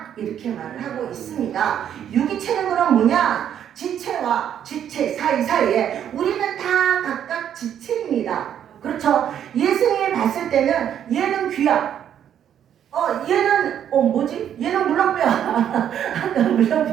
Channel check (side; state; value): left; quieter; 9.6 dB